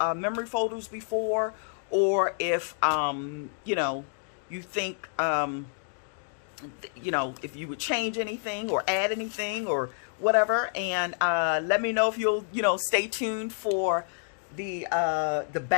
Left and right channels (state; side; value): silent; right; digital silence